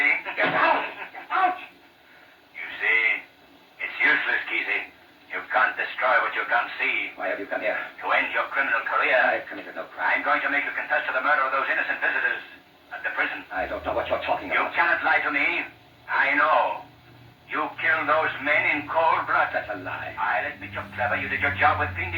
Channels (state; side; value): identical; both; correlation 1.00